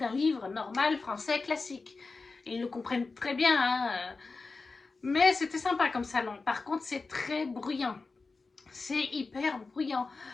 livre normal, français, classique. Et ils le comprennent très bien, hein. Mais c'était sympa comme salon. Par contre, c'est très bruyant. C'est hyper bruyant.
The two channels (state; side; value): quieter; right; 4.0 dB